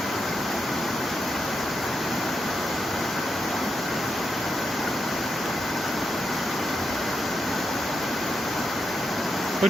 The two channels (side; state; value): both; normal; correlation 0.85